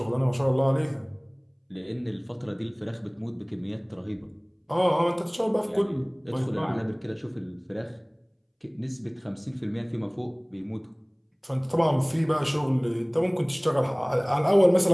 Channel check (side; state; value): both; identical; correlation 1.00